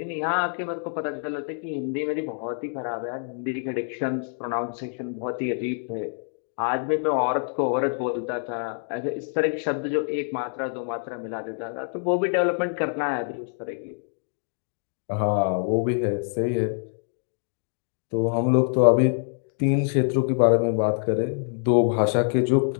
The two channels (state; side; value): silent; right; 57 dB below the other